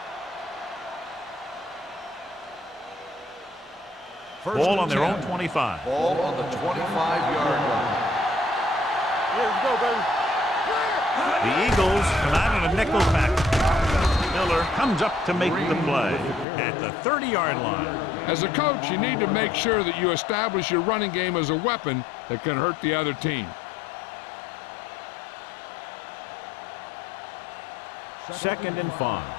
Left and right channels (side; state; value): right; drops out; at 16.4 s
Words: Ball on their own 25. Ball on the 25-yard line. Here we go, baby. The Eagles come out in a nickel package. Miller comes up to make the play at the 30-yard line. As a coach, you need to make sure that you establish your running game as a weapon that can hurt the other team. Second and 5.